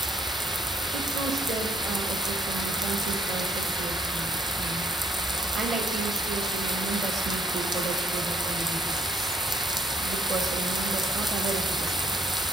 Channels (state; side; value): normal; both; correlation 0.66